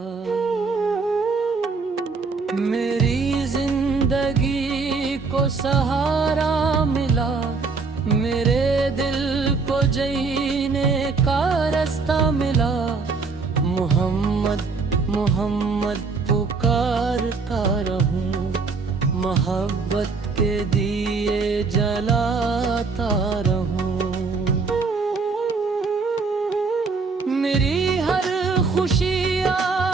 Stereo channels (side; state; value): left; quieter; 4.5 dB